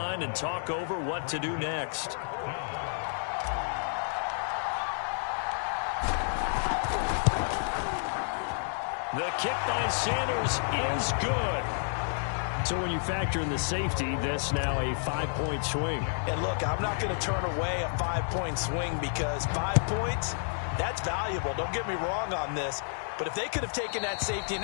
and talk over what to do next. The kick by Sanders is good. So when you factor in the safety, that's now a 5-point swing. And look, I'm not going to turn away a 5-point swing because 5 points, that's valuable. Don't get me wrong on this. But if they could have taken that safety and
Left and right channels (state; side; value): silent; right; digital silence